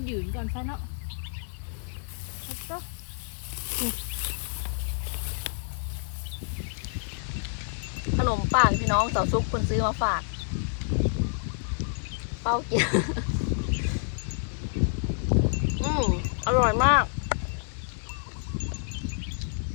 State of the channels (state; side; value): silent; right; digital silence